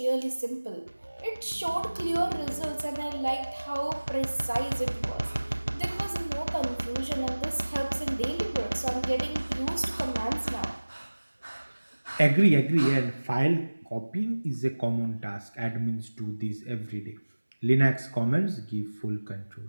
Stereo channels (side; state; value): both; inverted; correlation -1.00